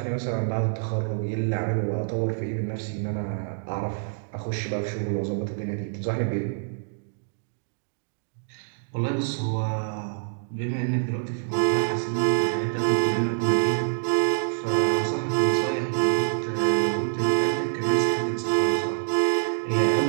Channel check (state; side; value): silent; left; digital silence